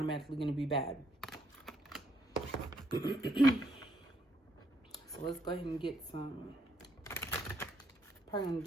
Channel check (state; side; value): normal; both; correlation 0.72